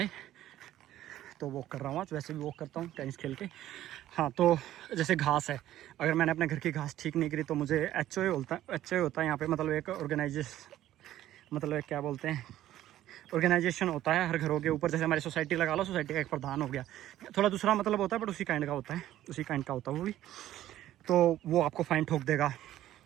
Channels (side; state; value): left; quieter; 13.3 dB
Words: तो वॉक कर रहा हूँ आज। वैसे भी वॉक करता हूँ टेनिस खेल के। हाँ, तो जैसे घास है, अगर मैंने अपने घर की घास ठीक नहीं करी तो मुझे HOA होता है यहाँ पे, मतलब एक मतलब एक क्या बोलते हैं, ऑर्गेनाइजेशन होता है हर घरों के ऊपर। जैसे हमारी सोसाइटी लगा लो, सोसाइटी का एक प्रधान हो गया, थोड़ा दूसरा मतलब होता है बट उसी काइंड का होता है, वो भी। तो वो आपको फाइन ठोक देगा,